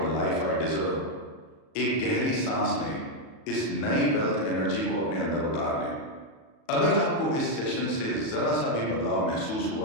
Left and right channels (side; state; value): right; late; 37 ms